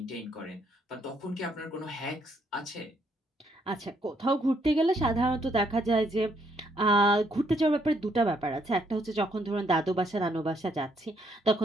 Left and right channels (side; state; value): both; normal; correlation 0.71